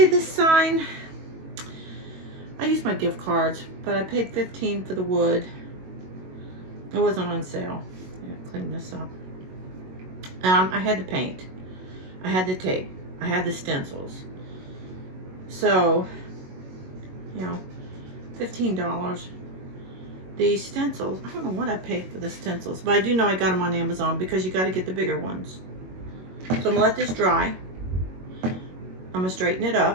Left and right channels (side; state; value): left; late; 22 ms